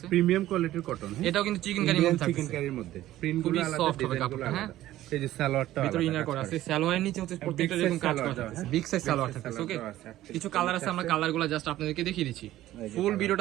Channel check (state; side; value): quieter; left; 14.5 dB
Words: প্রিমিয়াম কোয়ালিটির কটন। এটাও কিন্তু চিকেন কারির মধ্যে থাকছে, চিকেন কারির মধ্যে প্রিন্টগুলো আলাদা, সফট হবে কাপড়টা, হ্যাঁ। এই যে সালোয়ারটা ভিতরে ইনার করা আছে, সালোয়ারের নিচে হচ্ছে প্রত্যেকটা এরকম কাজ করা আছে, বিগ সাইজ সালোয়ার থাকছে। ওকে, কিছু কালার আছে, আমরা কালারগুলো জাস্ট আপনাদেরকে দেখিয়ে দিচ্ছি। ফুল